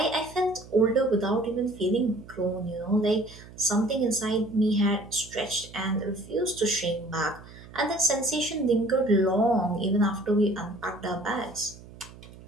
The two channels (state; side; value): noise; right; hum, 19 dB below the sound